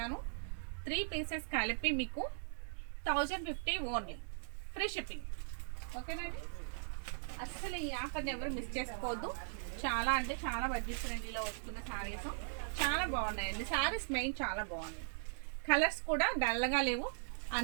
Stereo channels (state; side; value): silent; left; digital silence